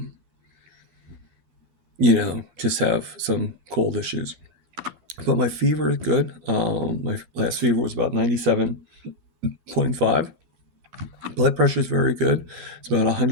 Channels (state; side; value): late; left; 12 ms